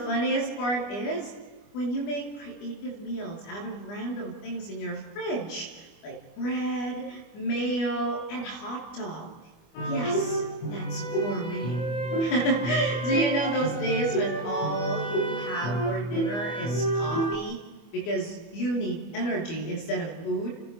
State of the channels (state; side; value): late; right; 25 ms